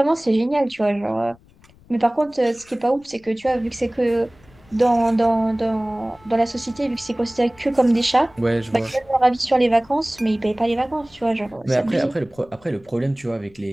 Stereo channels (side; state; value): left; noise; rumble, 28 dB below the sound